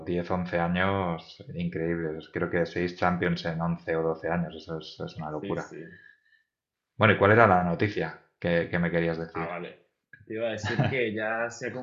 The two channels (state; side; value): identical; both; correlation 1.00